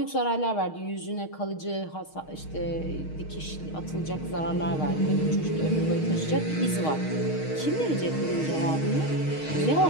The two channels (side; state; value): right; late; 6.4 ms